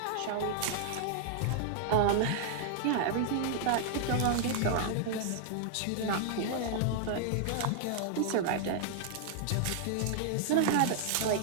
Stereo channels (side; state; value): both; different; correlation -0.01